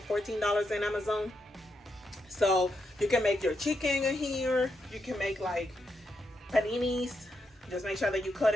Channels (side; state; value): both; normal; correlation 0.82